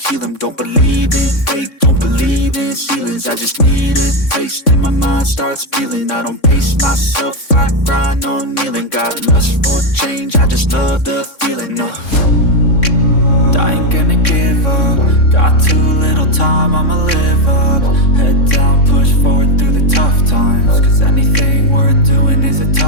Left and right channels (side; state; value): right; late; 3.6 ms